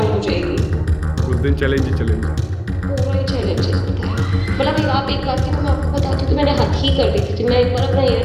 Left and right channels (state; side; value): identical; both; correlation 1.00